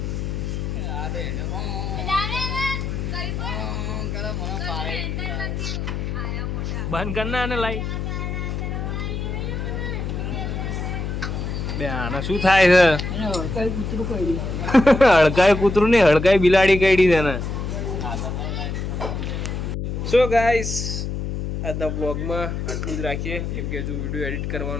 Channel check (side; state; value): left; noise; hum, 3 dB below the sound